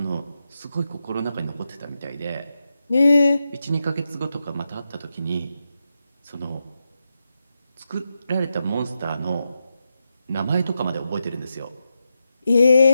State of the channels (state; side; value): inverted; both; correlation -0.88